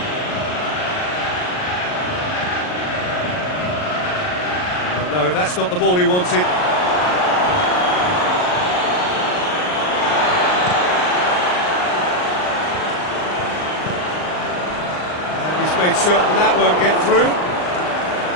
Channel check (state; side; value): late; right; 39 ms